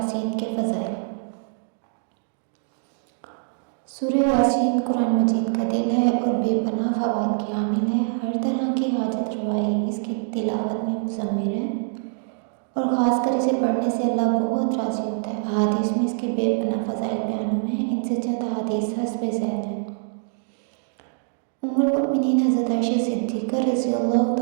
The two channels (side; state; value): left; silent; 61 dB below the other